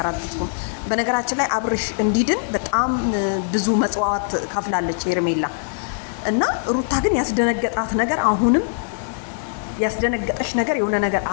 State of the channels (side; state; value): right; silent; digital silence